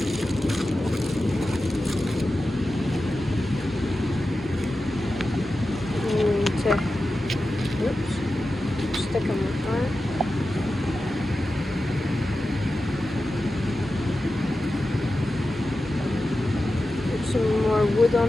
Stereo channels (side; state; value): both; normal; correlation 0.92